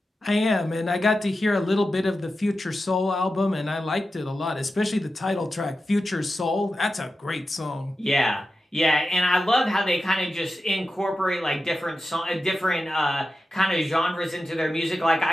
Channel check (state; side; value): normal; both; correlation 0.92